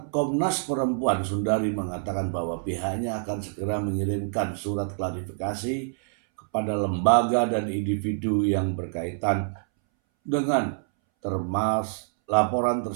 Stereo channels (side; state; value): left; silent; 61 dB below the other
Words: Komnas Perempuan Sundari mengatakan bahwa pihaknya akan segera mengirimkan surat klarifikasi kepada lembaga dan individu yang berkaitan dengan laporan